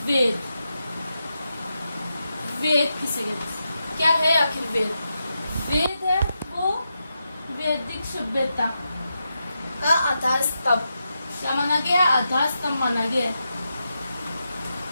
वेद। वेद किसे कहते हैं? क्या है आखिर वेद? वेद है वो वैदिक सभ्यता का आधार स्तंभ। क्या माना गया? आधार स्तंभ माना गया।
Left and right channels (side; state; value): both; inverted; correlation -0.86